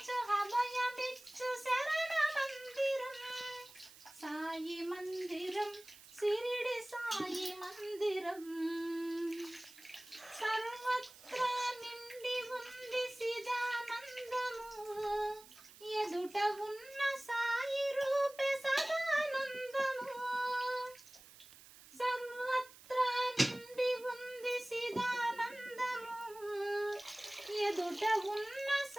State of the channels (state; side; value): noise; right; hiss, 20 dB below the sound